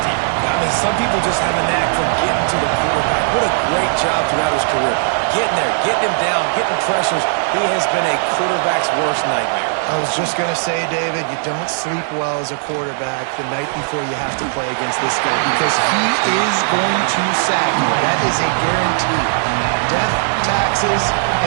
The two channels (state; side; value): silent; left; digital silence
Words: I mean, some people just have a knack for getting to the quarterback. What a great job throughout his career. Getting there, getting him down, getting pressures. He has been a quarterback's worst nightmare. I was just going to say, David, you don't sleep well as a quarterback the night before you have to play against this guy, because he is going to sack you. That is a guarantee. Death, taxes,